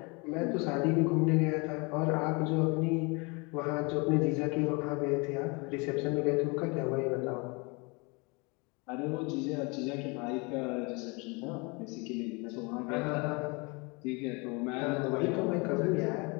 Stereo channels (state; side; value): quieter; right; 29.2 dB